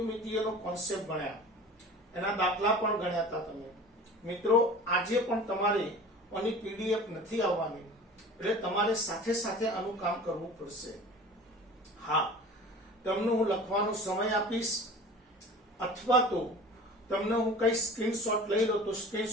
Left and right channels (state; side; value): normal; both; correlation 0.40